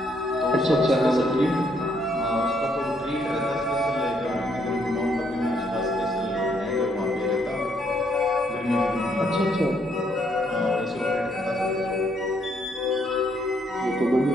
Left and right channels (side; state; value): both; normal; correlation 0.71